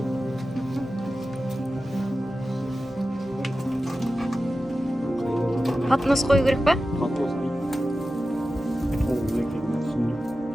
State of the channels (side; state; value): both; normal; correlation 0.93